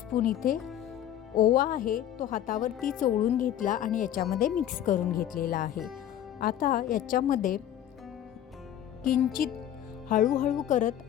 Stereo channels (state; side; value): quieter; right; 11.0 dB